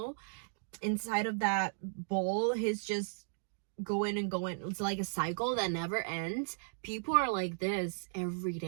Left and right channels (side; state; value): left; silent; digital silence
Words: inside of that bowl? He's just going and going. It's like a cycle that never ends. People are like this every